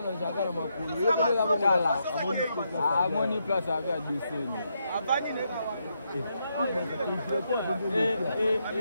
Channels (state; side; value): inverted; both; correlation -0.80